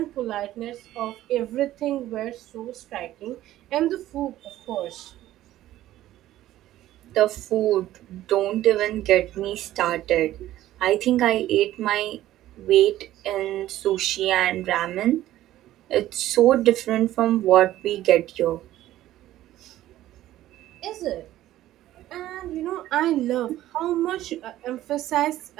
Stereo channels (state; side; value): quieter; left; 14.1 dB